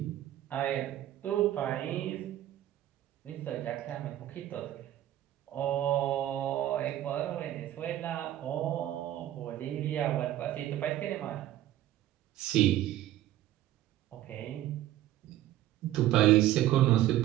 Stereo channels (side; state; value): left; quieter; 13.4 dB